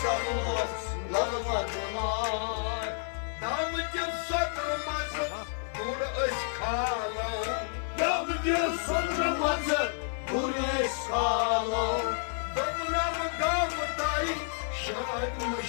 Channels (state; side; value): silent; right; digital silence